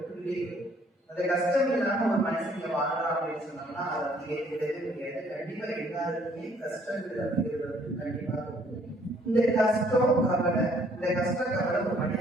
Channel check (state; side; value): normal; both; correlation 0.63